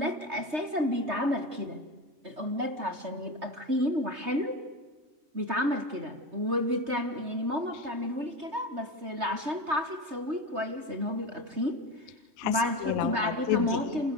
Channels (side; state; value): left; late; 3.2 ms